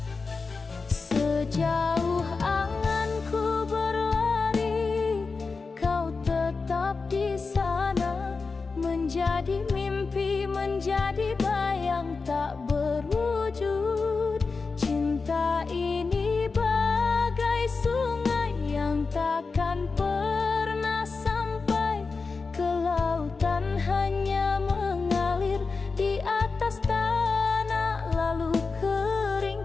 Sejauh anganku berlari, kau tetap di sana, menjadi mimpi, menjadi bayang tak berwujud. Cinta ini bagai sungai yang takkan pernah sampai ke lautan, hanya mengalir di atas tanah lalu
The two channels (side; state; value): right; quieter; 4.4 dB